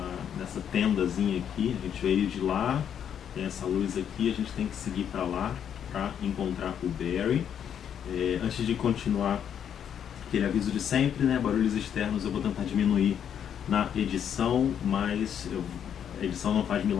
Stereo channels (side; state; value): right; quieter; 8.8 dB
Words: tendazinha aqui, a gente veio de lá, tem essa luz aqui, a gente tem que seguir para lá para encontrar o Barry. Antes de continuar, aquele aviso de sempre, né, barulhos externos eu vou tentar diminuir na edição, mas a edição não faz